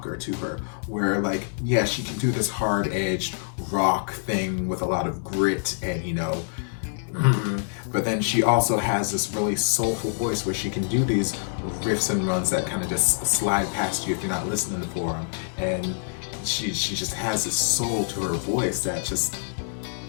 to her, where, like, yeah, she can do this hard-edged rock thing with a lot of grit and, you know, But then she also has this really soulful voice where she can do these riffs and runs that kind of just slide past you if you're not listening for them. And she just has this soul to her voice that just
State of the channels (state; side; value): silent; right; 61 dB below the other